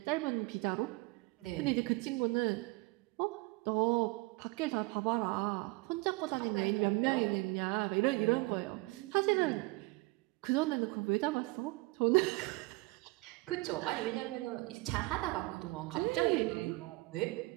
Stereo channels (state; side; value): quieter; left; 23.7 dB